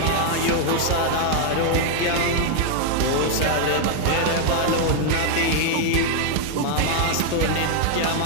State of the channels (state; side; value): different; both; correlation 0.00